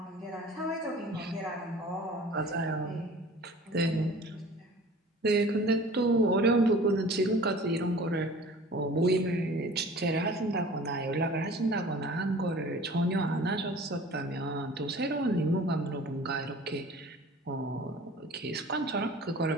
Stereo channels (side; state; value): both; normal; correlation 0.45